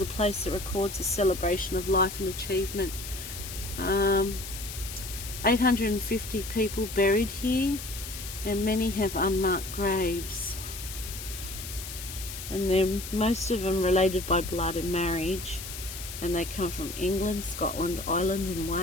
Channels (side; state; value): left; noise; hiss, 9 dB below the sound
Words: place that records a celebration of life and achievement. 850 people buried here, and many have unmarked graves. And they're most of them related by blood and marriage, and they come from England, Scotland, Ireland and